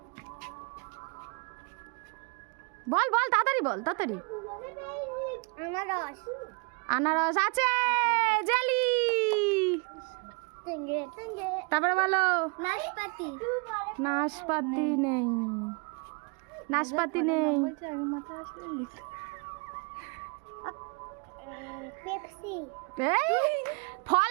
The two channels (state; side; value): quieter; left; 32.1 dB